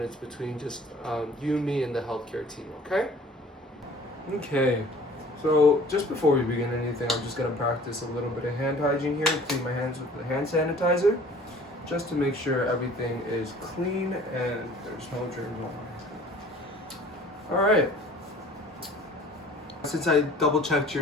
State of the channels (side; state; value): both; normal; correlation 0.49